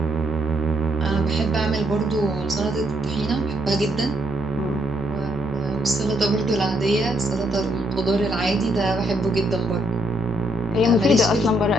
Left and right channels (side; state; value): both; normal; correlation 0.73